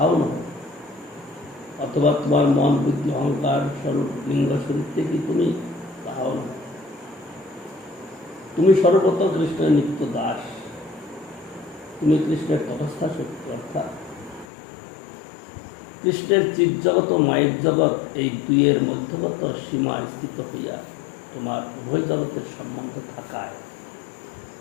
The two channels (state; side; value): drops out; right; at 14.5 s